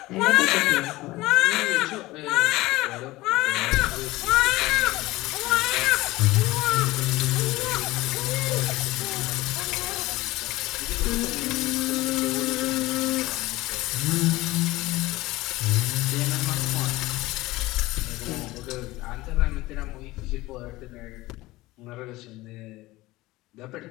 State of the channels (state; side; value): quieter; right; 19.1 dB